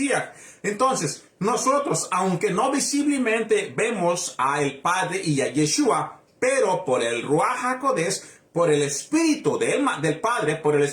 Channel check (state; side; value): identical; both; correlation 1.00